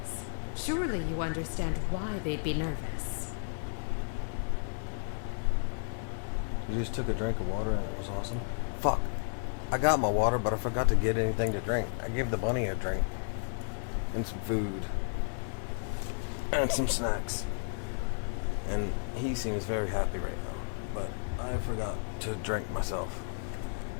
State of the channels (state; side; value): silent; right; 56 dB below the other